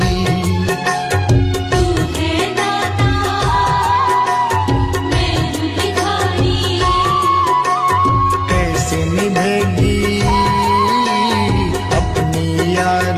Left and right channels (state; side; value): identical; both; correlation 1.00